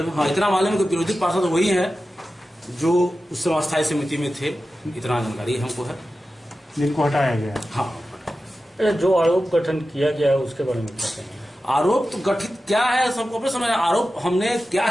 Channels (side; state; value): both; normal; correlation 0.93